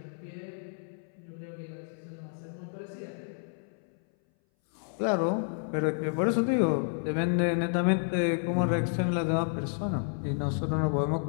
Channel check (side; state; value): right; silent; 58 dB below the other